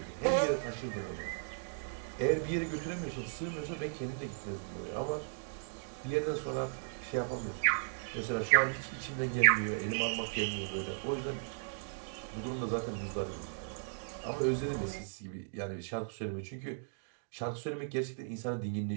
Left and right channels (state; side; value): silent; left; digital silence